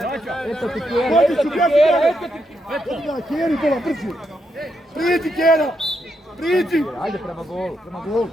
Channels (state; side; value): normal; both; correlation 0.80